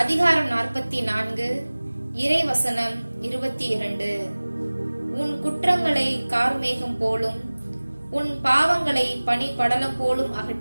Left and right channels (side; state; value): both; inverted; correlation -1.00